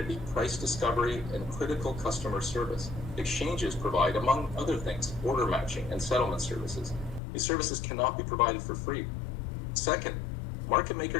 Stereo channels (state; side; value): drops out; right; at 7.2 s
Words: price discovery, and critical customer service. Exchanges provide, among other things, order matching and settlement services. These services cannot be provided for free. Second, market